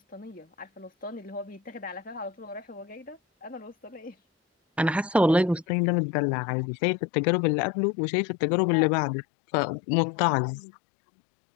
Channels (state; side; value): drops out; right; at 5.7 s